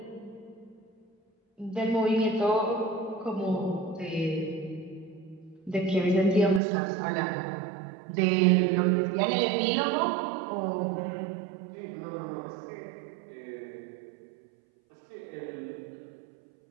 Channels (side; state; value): left; drops out; at 6.6 s